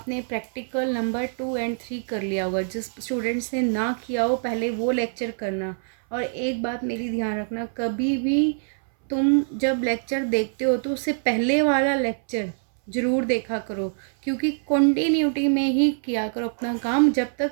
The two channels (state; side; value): silent; left; 62 dB below the other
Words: प्रैक्टिकल नंबर 2 एंड 3 कर लिया होगा। जिस स्टूडेंट्स ने ना किया हो पहले वो लेक्चर करना। और एक बात मेरी ध्यान रखना, कभी भी तुम जब लेक्चर देखते हो तो उससे पहले वाला लेक्चर ज़रूर देखा करो, क्योंकि कंटिन्यूटी में ही किया करो अपना काम। जब